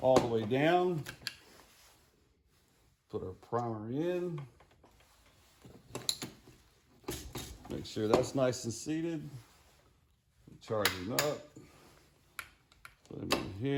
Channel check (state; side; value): identical; both; correlation 1.00